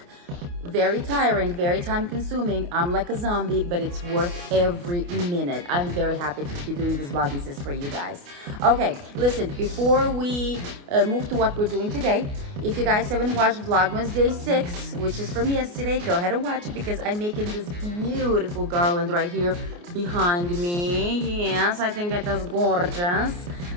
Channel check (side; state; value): left; late; 29 ms